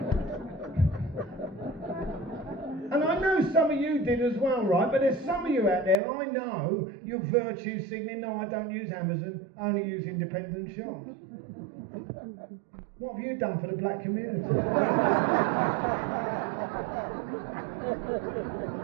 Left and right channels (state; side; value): drops out; left; at 6.0 s